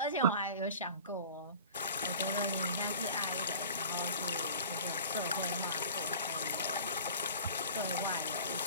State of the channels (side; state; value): both; inverted; correlation -0.42